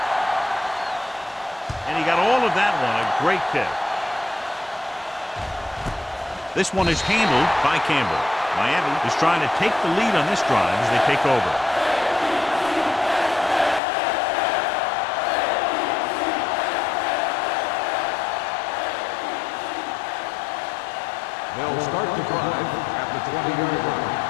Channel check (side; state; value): right; drops out; at 13.8 s